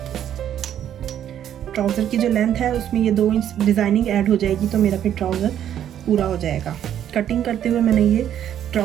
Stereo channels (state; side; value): quieter; left; 10.3 dB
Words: ट्राउज़र की जो लेंथ है उसमें ये 2 इंच डिज़ाइनिंग ऐड हो जाएगी, तो मेरा फिर ट्राउज़र पूरा हो जाएगा। कटिंग करते हुए मैंने ये